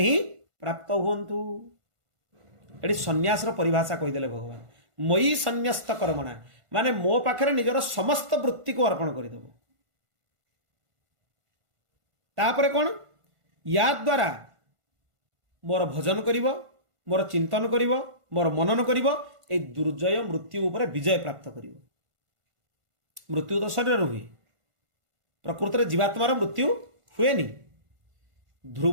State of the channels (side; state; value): left; late; 1.5 ms